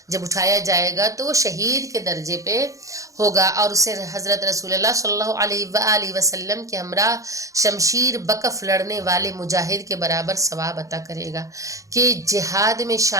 جب اٹھایا جائے گا تو وہ شہید کے درجے پہ ہوگا، اور اسے حضرت رسول اللہ صلی اللہ علیہ وآلہ وسلم کے ہمراہ شمشیر بکف لڑنے والے مجاہد کے برابر ثواب عطا کرے گا۔ کہ جہاد میں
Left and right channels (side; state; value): left; late; 0.16 ms